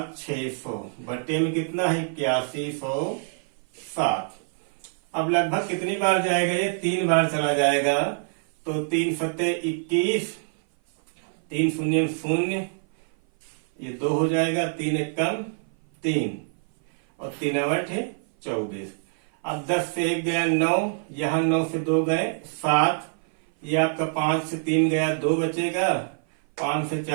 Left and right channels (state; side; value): silent; left; 57 dB below the other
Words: बटे में कितना है 8107। अब लगभग कितनी बार जाएगा ये 3 बार चला जाएगा, तो 3 सत्ते 21, 3 शून्य 0, ये 2 हो जाएगा, 3 एकम 3 और 3 8 है 24। अब 10 से 1 गया 9, यहाँ 9 से 2 गए 7, ये आपका 5 से 3 गया 2 बचेगा, 5 से